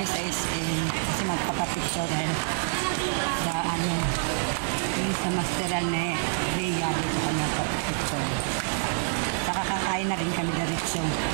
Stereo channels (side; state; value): left; silent; digital silence